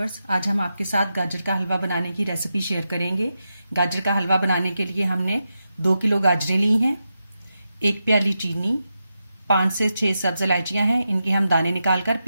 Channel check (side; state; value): both; inverted; correlation -0.88